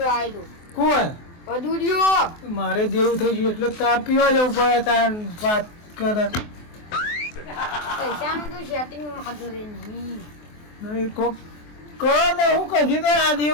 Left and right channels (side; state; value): right; late; 24 ms